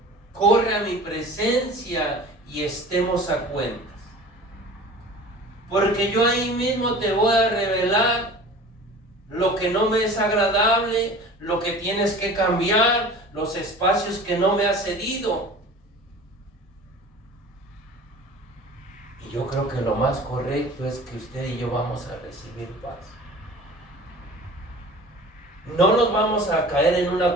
corre a mi presencia y estemos a cuentas. Porque yo ahí mismo te voy a revelar lo que no me es agradable, lo que tienes que cambiar, los espacios que no me has cedido. Y yo creo que lo más correcto es que usted y yo vamos a recibir paz. No nos vamos a caer en una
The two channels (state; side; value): normal; both; correlation 0.41